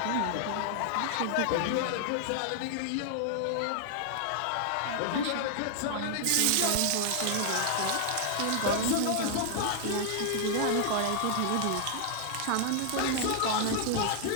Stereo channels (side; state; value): both; different; correlation -0.01